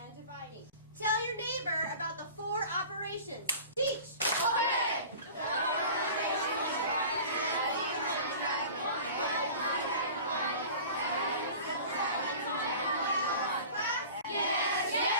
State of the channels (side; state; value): both; inverted; correlation -0.39